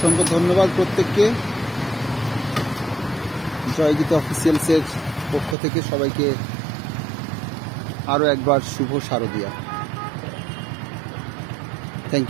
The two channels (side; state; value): left; drops out; at 5.6 s